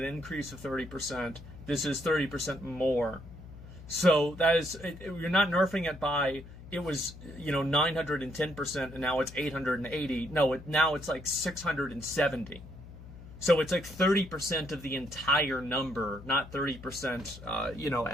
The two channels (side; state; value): left; noise; hum, 16 dB below the sound